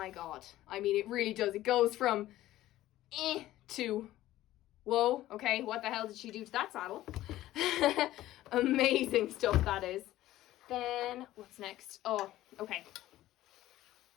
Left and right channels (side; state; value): right; quieter; 15.0 dB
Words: God. I mean, it really does. It goes from to, whoa, okay, what the hell did she do to that saddle? Amazing stuff, that is. Then, what's next? Oh, okay.